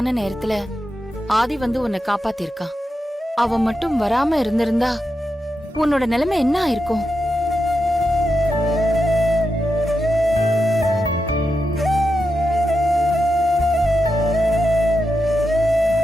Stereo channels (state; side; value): normal; both; correlation 0.87